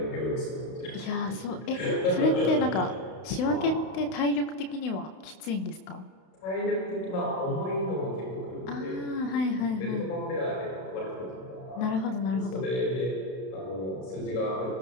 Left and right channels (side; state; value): right; late; 32 ms